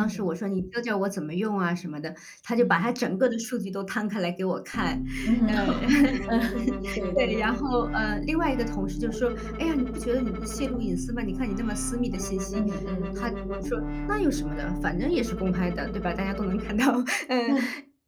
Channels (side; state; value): both; identical; correlation 1.00